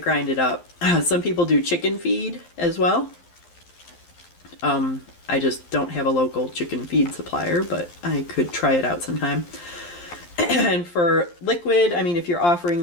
it up. Some people do chicken feed as well. I just don't have a local chicken feed supplier, but I could try it out sometime. And for liquid, I mean, if you're offering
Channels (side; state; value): right; late; 11 ms